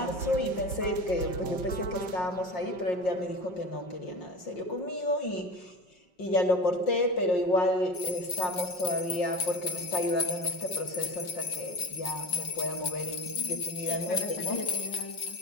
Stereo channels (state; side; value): late; right; 5.7 ms